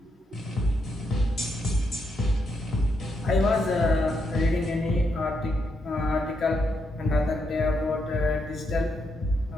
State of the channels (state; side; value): normal; both; correlation 0.80